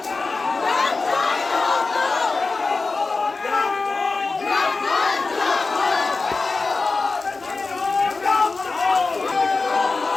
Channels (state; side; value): quieter; right; 3.9 dB